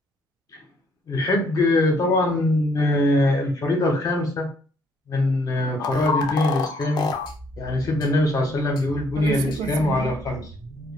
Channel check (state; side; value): normal; both; correlation 0.67